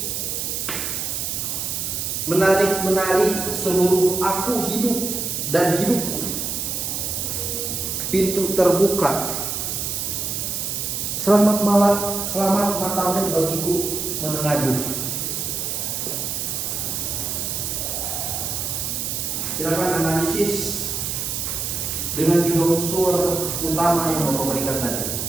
Menarik-menari seluruh aku hidup dan hidupku. Pintu terbuka. Selamat malam, selamat matamu bagiku menengadu. Silakan analisis dengan 3 unsur utama yang Bapak berikan tadi.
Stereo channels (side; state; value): right; noise; hiss, 2 dB below the sound